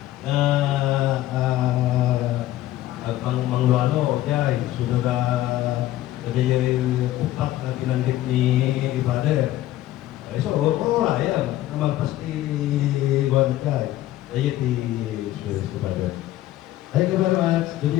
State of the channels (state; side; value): quieter; right; 14.6 dB